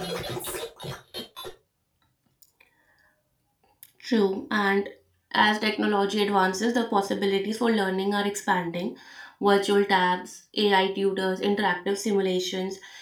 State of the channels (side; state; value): both; identical; correlation 1.00